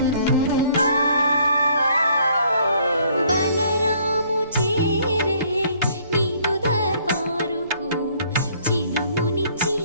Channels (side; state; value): both; inverted; correlation -0.62